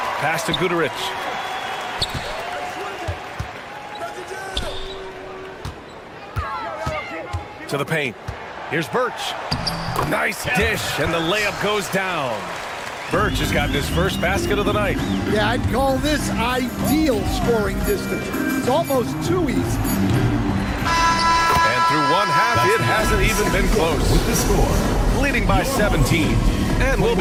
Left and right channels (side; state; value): both; identical; correlation 1.00